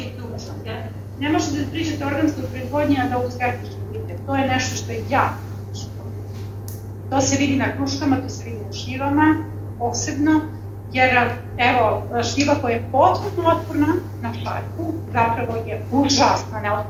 je ključno. Ne možete da pričate o organskoj proizvodnji, a da u skeptički budete. To je nešto što je jako ključno. To se vidi na kruškama, to se vidi na šljivama, posebno, jer evo, šljiva koja je potpuno otporna na šarku, zapravo je užasno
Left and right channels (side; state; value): both; identical; correlation 1.00